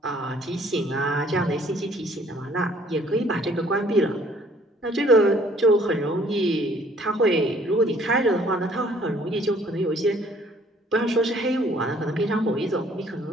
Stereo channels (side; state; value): both; normal; correlation 0.59